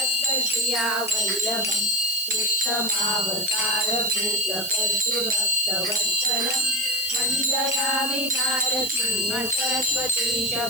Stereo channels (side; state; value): right; noise; hiss, 7 dB below the sound